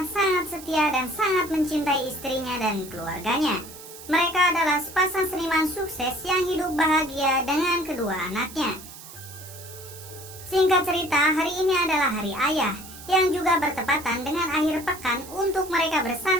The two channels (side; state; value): right; noise; hiss, 16 dB below the sound